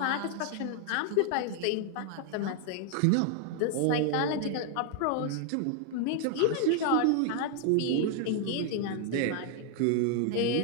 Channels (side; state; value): both; different; correlation 0.00